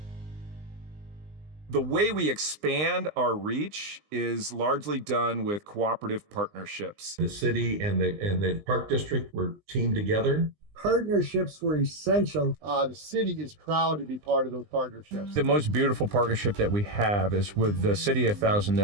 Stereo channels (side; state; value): left; late; 20 ms